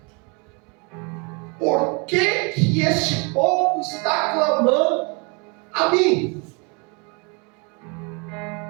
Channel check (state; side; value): quieter; left; 32.0 dB